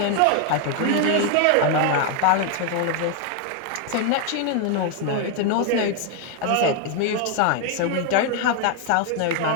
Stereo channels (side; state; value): both; different; correlation 0.00